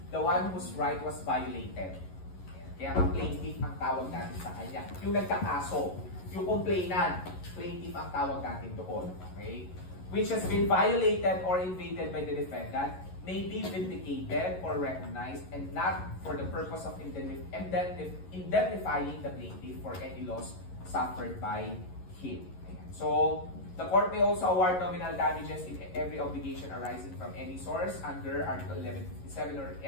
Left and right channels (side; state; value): right; late; 11 ms